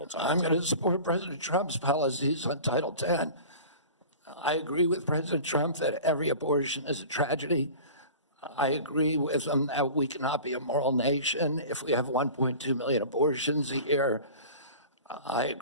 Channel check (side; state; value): both; inverted; correlation -0.39